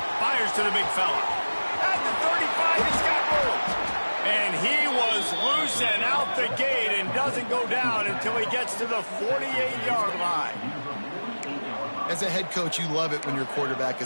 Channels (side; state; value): both; inverted; correlation -1.00